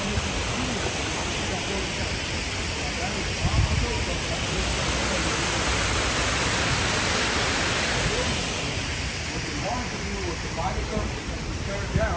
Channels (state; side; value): identical; both; correlation 1.00